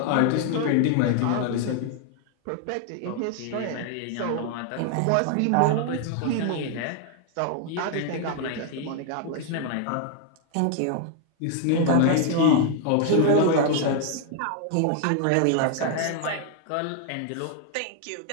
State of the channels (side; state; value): both; different; correlation 0.00